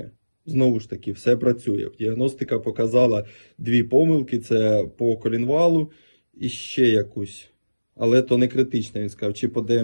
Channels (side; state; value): both; inverted; correlation -1.00